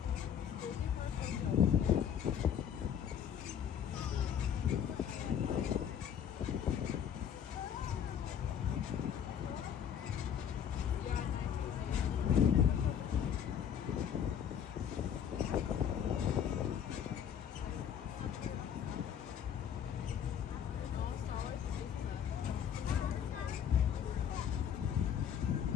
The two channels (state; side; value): quieter; right; 8.7 dB